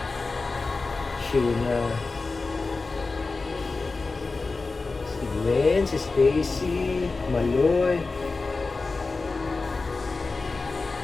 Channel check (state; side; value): quieter; right; 3.8 dB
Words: Sheena, si Gwen, si Stacy, Maloy.